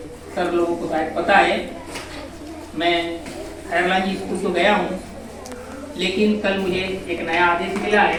सब लोगों को शायद पता है, मैं खैरलानी स्कूल तो गया हूँ, लेकिन कल मुझे एक नया आदेश मिला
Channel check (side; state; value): both; identical; correlation 1.00